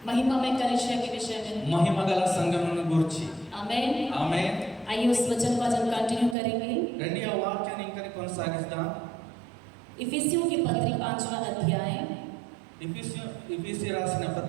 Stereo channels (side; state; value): left; drops out; at 6.4 s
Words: महिमा में कलीसिया के विषय में. మహిమగల సంఘమును గురించి. आमेन. ఆమేన్. आइए उस वचन को आज हम कंटिन्यू करेंगे. రండి ఆ వాక్యాన్ని ఇంకా కొనసాగిద్దాం. इफिसियों की पत्री 5वां अध्याय. इफिसी రాసిన